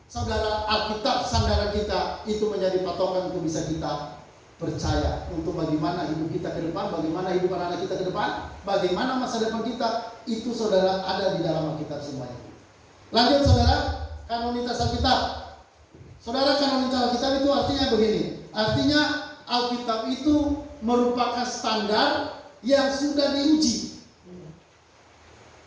saudara, Alkitab sandaran kita itu menjadi patokan untuk bisa kita percaya untuk bagaimana hidup kita ke depan, bagaimana hidup anak-anak kita ke depan, bagaimana masa depan kita, itu saudara ada di dalam Alkitab semuanya. Lanjut saudara, kanonitas Alkitab. Saudara, kanonitas Alkitab itu artinya begini. Artinya Alkitab itu merupakan standar yang sudah diuji,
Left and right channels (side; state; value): both; identical; correlation 1.00